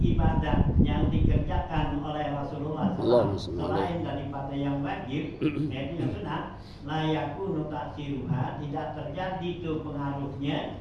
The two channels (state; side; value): identical; both; correlation 1.00